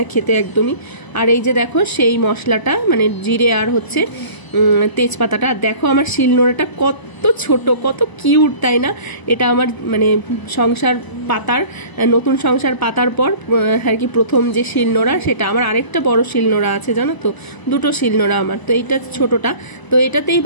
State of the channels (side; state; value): right; late; 1.0 ms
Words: খেতে একদমই। আর এই যে দেখো সেই মশলাটা, মানে জিরে আর হচ্ছে তেজপাতাটা, দেখো আমার শিলনোড়াটা কত ছোট, কত কিউট, তাই না? এটা আমার মানে সংসার পাতার, নতুন সংসার পাতার পর আর কি প্রথম যে শিলনোড়া, সেটা আমার আরেকটা বড় শিলনোড়া আছে জানো তো, 2টো শিলনোড়া আমার। তো এইটা ছোটটা, তো এটাতেই